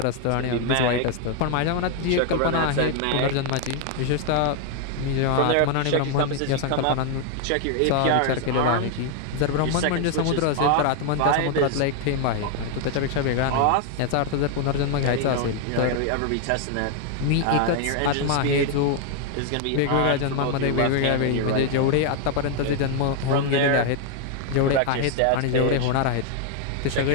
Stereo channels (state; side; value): different; both; correlation 0.00